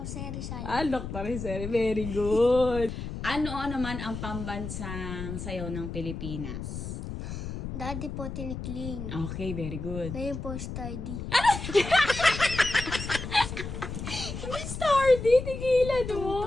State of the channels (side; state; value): left; noise; rumble, 7 dB below the sound